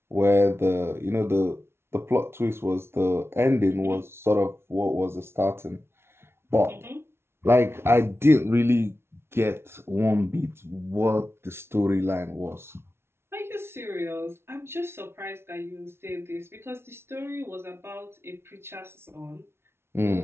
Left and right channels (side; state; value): left; late; 0.12 ms